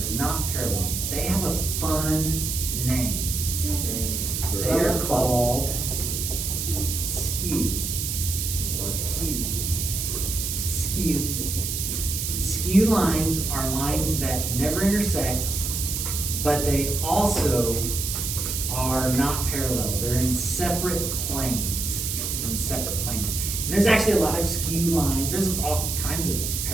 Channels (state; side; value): noise; right; hiss, 2 dB below the sound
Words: not parallel. They have a fun name. They are called skew. Skew. Skew lines are lines that never intersect, but they also are not parallel. They're in separate planes. And there's actually a lot of skew lines. There's all kinds of